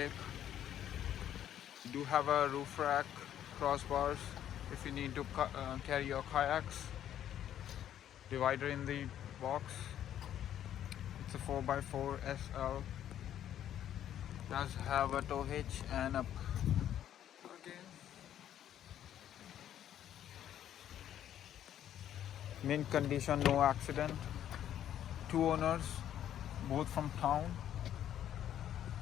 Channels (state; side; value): quieter; right; 10.8 dB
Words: You do have a roof rack, crossbars if you need to carry your kayaks, divider in the box. It's a 4x4 SL. Does have a tow hitch and a mint condition, no accident. Two owners, both from town.